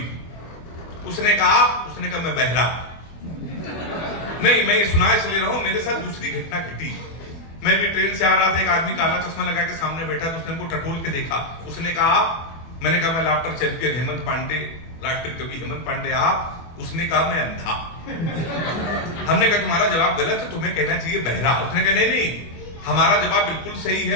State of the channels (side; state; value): right; late; 24 ms